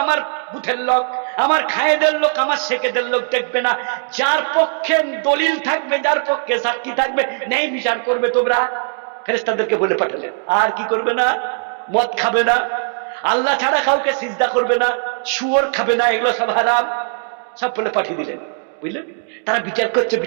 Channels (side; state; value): left; silent; digital silence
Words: আমার বুথের লোক, আমার খায়েদের লোক আমার শেখেদের লোক দেখবে না, যার পক্ষে দলিল থাকবে, যার পক্ষে সাক্ষী থাকবে, ন্যায় বিচার করবে তোমরা। ফেরেশতাদেরকে বলে পাঠালেন। আর কি করবে না? মদ খাবে না, আল্লাহ ছাড়া কাউকে সিজদা করবে না, শুয়োর খাবে না, এগুলো সব হারাম, সব বলে পাঠিয়ে দিলেন। বুঝলেন? তারা বিচার করছে